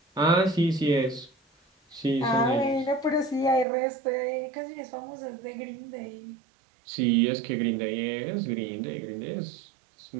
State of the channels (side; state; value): left; drops out; at 3.7 s